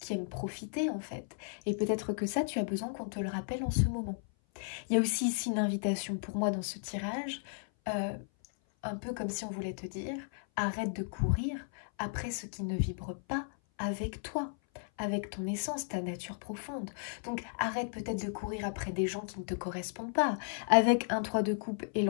aime profiter en fait. Et peut-être que ça, tu as besoin qu'on te le rappelle en ce moment. Il y a aussi ici une invitation pour moi dans ce tirage, un peu comme si on voulait te dire, arrête de courir après ce qui ne vibre pas avec toi, avec ton essence, ta nature profonde. Donc arrête peut-être de courir après des gens qui ne te correspondent pas. Avec un 3 de coupe et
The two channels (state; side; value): silent; right; 55 dB below the other